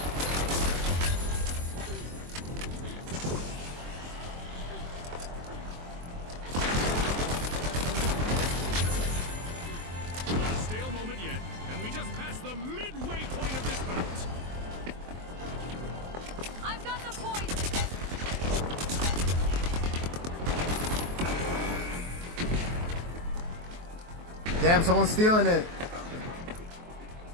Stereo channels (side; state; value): left; late; 23 ms